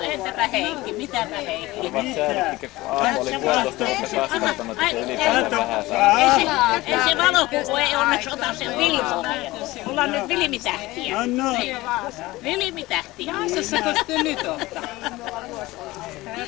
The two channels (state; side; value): quieter; right; 19.3 dB